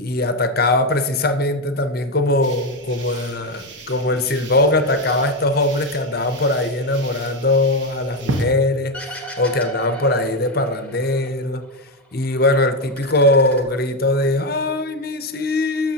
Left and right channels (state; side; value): normal; both; correlation 0.10